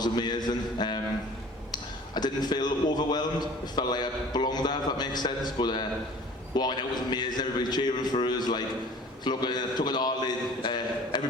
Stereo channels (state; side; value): normal; both; correlation 0.47